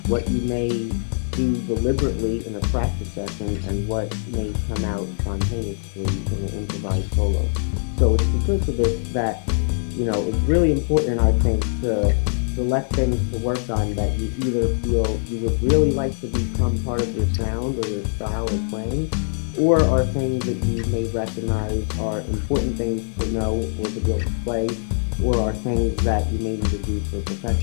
what you may do deliberately in a practice session and what may come out spontaneously in an improvised solo. So it's because of this that, it's really important, I think, to select things to work on that you either feel you would really like to become part of your sound or your style or playing, or are things that you may recognize are important things to know or to be able to play, or are things that you may need to do for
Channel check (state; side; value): silent; right; digital silence